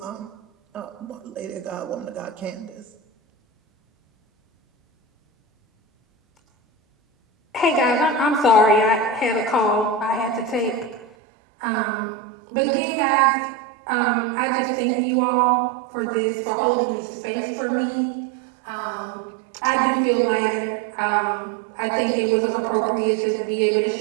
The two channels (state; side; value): drops out; left; at 11.1 s